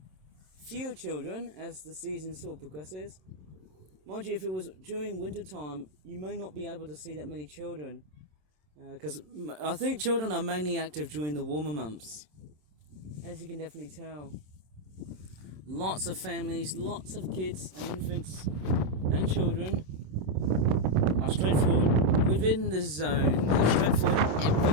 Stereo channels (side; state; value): left; late; 27 ms